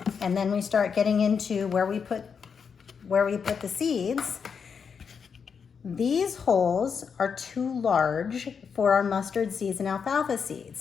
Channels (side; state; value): right; quieter; 6.3 dB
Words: And then we start getting into where we put the seeds. These holes are too large for our mustard seeds and alfalfa